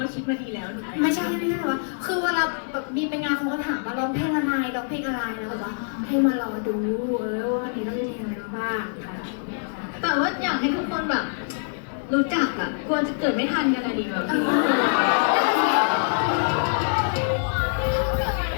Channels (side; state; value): right; silent; digital silence